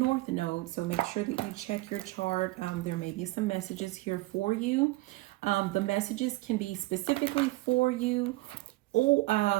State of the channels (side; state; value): left; quieter; 20.3 dB